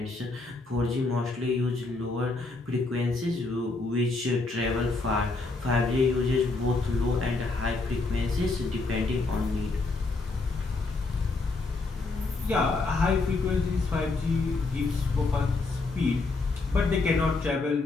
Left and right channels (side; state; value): right; quieter; 3.6 dB